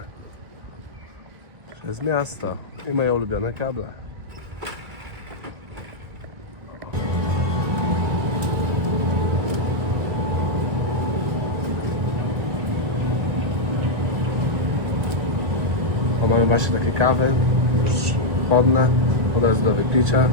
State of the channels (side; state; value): left; late; 1.7 ms